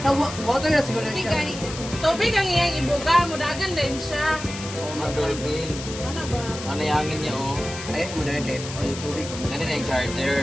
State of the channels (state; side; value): noise; left; hiss, 10 dB below the sound